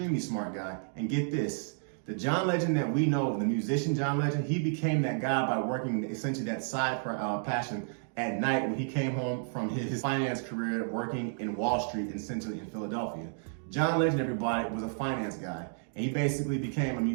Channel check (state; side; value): silent; left; digital silence